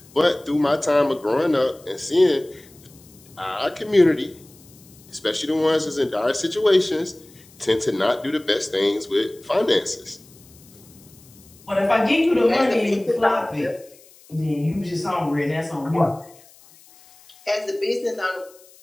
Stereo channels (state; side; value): noise; left; hiss, 25 dB below the sound